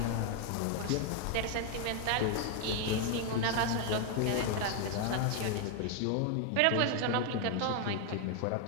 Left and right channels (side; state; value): both; different; correlation 0.00